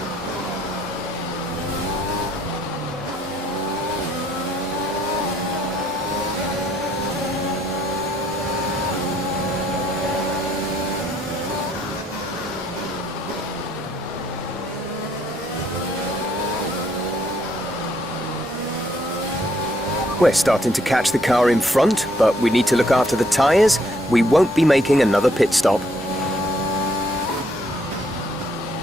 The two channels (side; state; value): both; normal; correlation 0.68